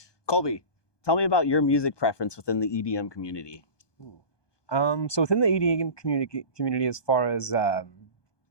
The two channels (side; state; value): right; late; 1.2 ms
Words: Colby, tell me about your music preference within the EDM community. So within the EDM community, as far as